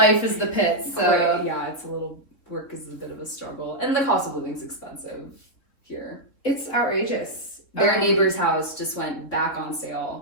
is the pit. So it's a little work is a bit of a struggle, and the cost of living is expensive here. It's outrageous. Their neighbor's house just went back on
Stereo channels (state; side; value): late; right; 3.7 ms